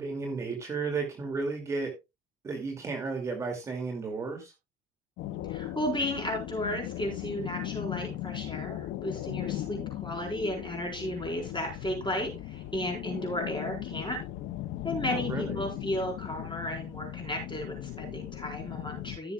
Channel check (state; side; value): normal; both; correlation 0.40